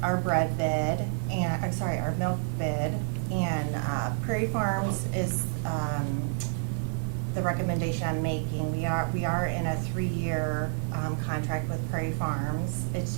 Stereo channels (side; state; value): left; silent; digital silence